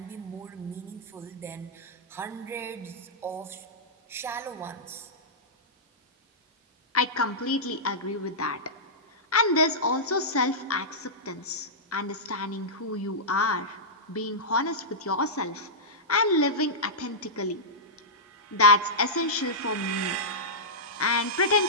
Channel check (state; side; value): normal; both; correlation -0.13